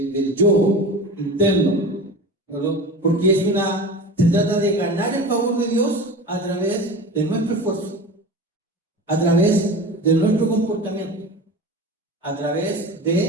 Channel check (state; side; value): normal; both; correlation 0.32